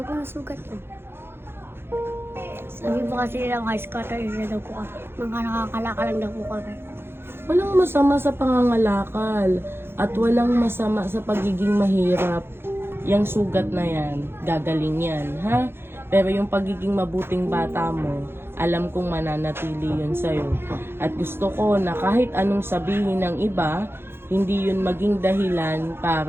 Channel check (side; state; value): left; late; 0.11 ms